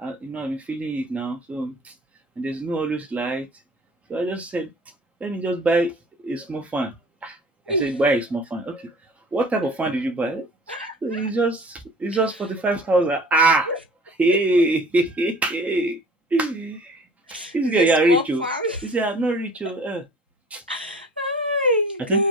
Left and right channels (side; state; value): both; normal; correlation 0.46